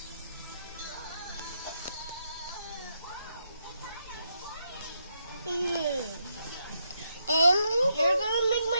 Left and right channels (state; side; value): inverted; both; correlation -0.80